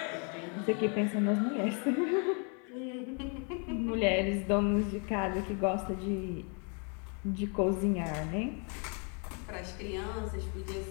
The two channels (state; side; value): quieter; right; 38.2 dB